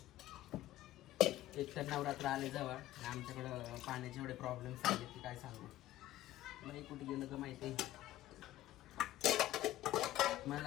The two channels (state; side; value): quieter; right; 14.7 dB